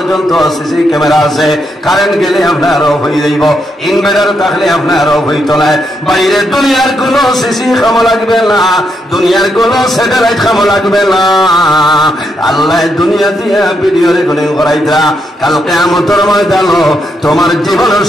সিসি ক্যামেরা আছে। কারেন্ট গেলে আপনার অফ হয়ে যাইব, ইনভার্টার থাকলে আপনার অফ হইত না। বাইরে দুনিয়ার কোনো সিসি কামো লাগবে না, দুনিয়ার কোনো স্যাটেলাইট কামো লাগবে না। আল্লাহ দুনিয়া দিয়া ভিডিও রেকর্ডিং করাইতা, কাল কিয়ামতের ময়দানে তোমার জীবনের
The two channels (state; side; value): normal; both; correlation 0.79